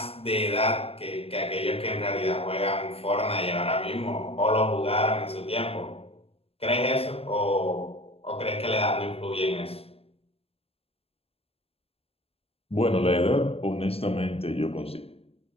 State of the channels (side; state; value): right; late; 0.28 ms